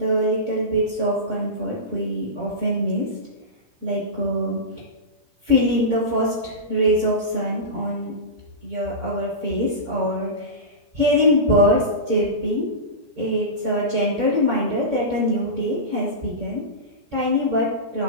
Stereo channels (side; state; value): left; late; 17 ms